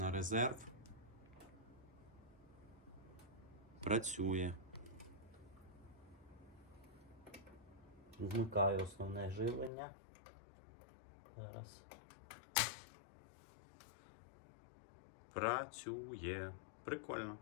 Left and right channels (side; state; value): right; drops out; at 9.7 s